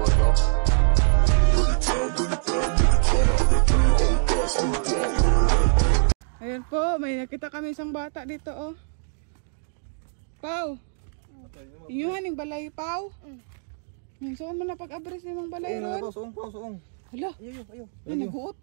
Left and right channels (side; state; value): left; silent; digital silence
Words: now. Ayan po, may nakita kami isang bata dito oh. Pau. Inyuhan yung balay, Pau. Saan mo na pag-abres ni mong balay ron? Suong. Hala. Ayo. Ay, nag-uot